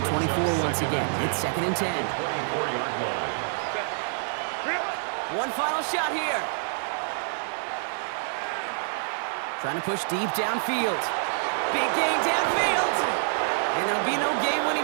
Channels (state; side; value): silent; left; 60 dB below the other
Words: the 24 once again. It's 2nd and 10. 24-yard line. One final shot here. Trying to push deep downfield. Big gain downfield. And there'll be no game-winning